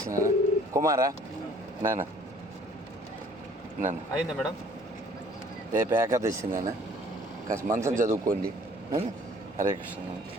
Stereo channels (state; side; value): normal; both; correlation 0.54